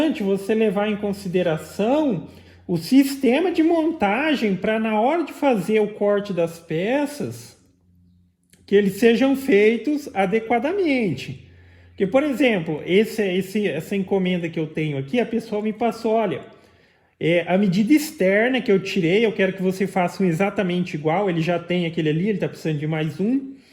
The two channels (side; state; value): both; identical; correlation 1.00